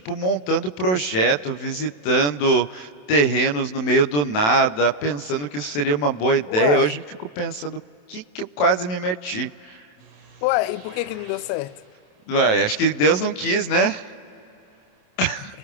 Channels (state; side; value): late; right; 27 ms